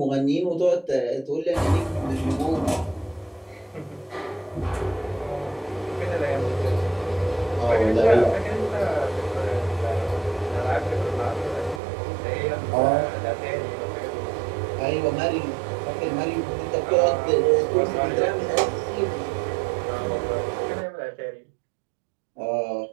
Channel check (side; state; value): left; drops out; at 11.8 s